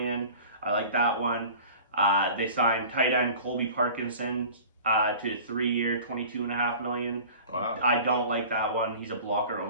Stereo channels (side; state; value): both; inverted; correlation -0.42